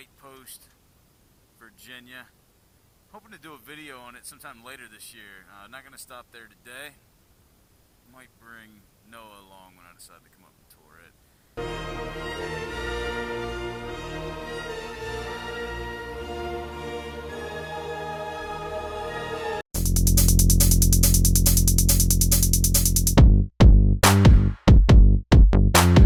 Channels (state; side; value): identical; both; correlation 1.00